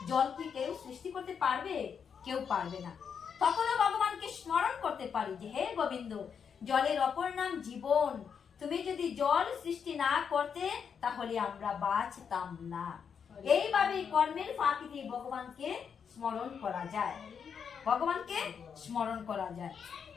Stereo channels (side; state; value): right; quieter; 6.9 dB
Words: জল কি কেউ সৃষ্টি করতে পারবে? কেউ পারবে না। তখনও ভগবানকে স্মরণ করতে পারি যে হে গোবিন্দ, জলের অপর নাম জীবন, তুমি যদি জল সৃষ্টি না করতে তাহলে আমরা বাঁচতাম না। এইভাবে কর্মের ফাঁকি দিয়ে ভগবানকে স্মরণ করা যায়, ভগবানকে স্মরণ করা যায়।